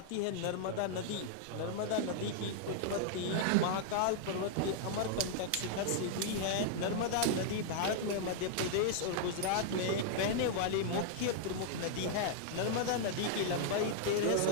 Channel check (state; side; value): different; both; correlation -0.01